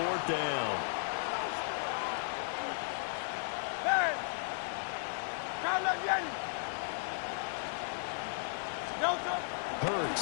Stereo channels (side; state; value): right; silent; 54 dB below the other